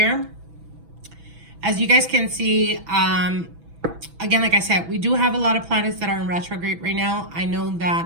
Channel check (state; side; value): late; left; 6.1 ms